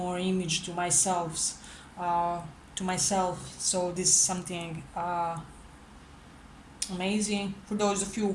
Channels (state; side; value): identical; both; correlation 1.00